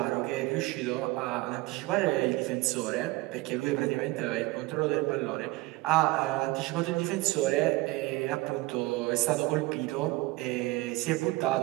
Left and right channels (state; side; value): quieter; left; 20.6 dB